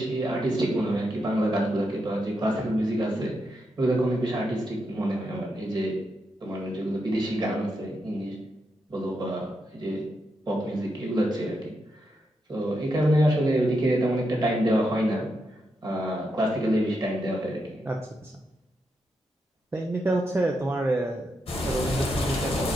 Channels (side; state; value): both; normal; correlation 0.84